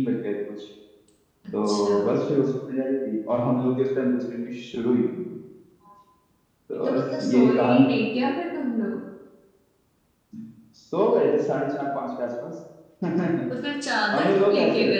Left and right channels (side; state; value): both; identical; correlation 1.00